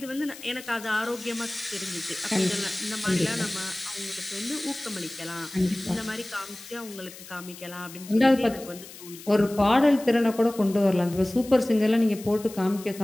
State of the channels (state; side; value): noise; left; hiss, 16 dB below the sound